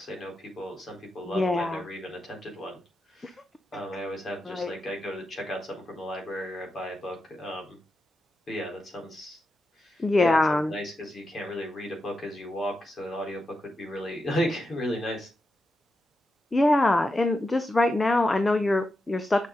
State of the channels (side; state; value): both; normal; correlation 0.88